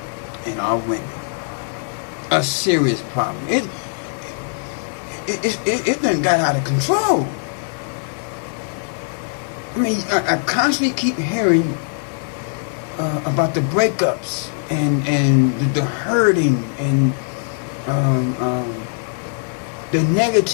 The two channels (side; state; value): right; silent; digital silence